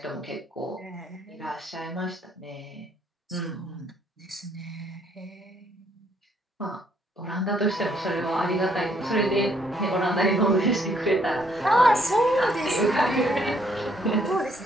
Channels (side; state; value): both; normal; correlation 0.68